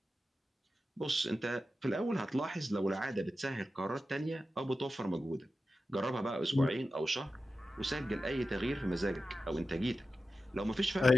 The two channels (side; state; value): both; normal; correlation 0.92